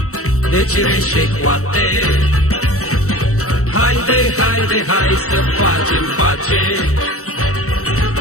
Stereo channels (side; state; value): right; late; 0.65 ms